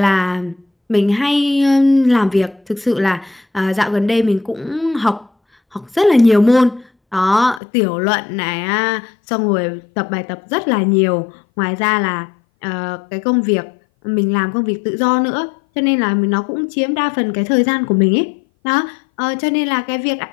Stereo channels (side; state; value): right; drops out; at 7.6 s